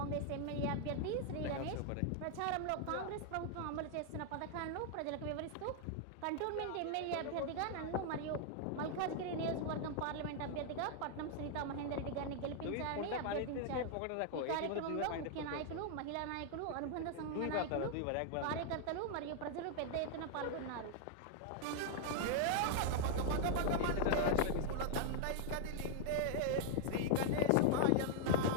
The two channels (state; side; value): different; both; correlation 0.00